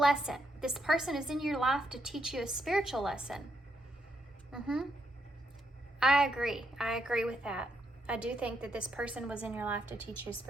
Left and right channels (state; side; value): normal; both; correlation 0.78